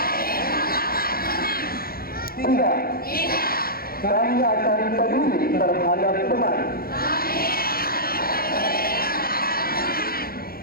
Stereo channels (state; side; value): late; right; 0.43 ms